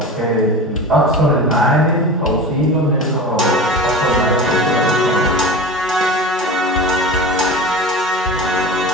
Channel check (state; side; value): normal; both; correlation 0.31